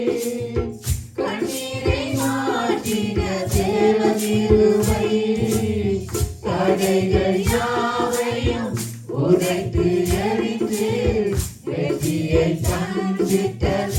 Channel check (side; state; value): both; identical; correlation 1.00